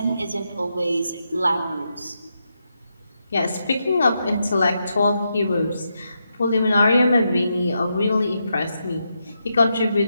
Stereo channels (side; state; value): both; inverted; correlation -0.84